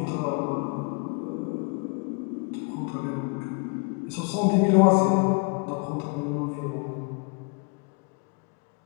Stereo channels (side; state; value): right; quieter; 33.5 dB